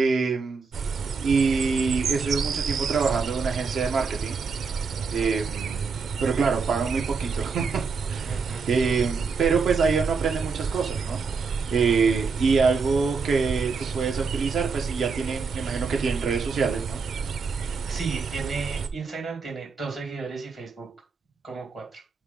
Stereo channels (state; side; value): quieter; left; 4.9 dB